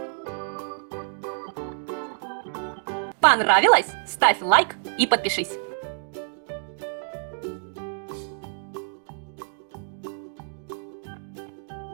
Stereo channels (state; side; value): silent; left; digital silence